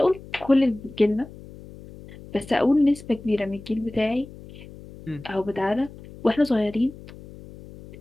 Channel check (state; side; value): noise; left; hum, 17 dB below the sound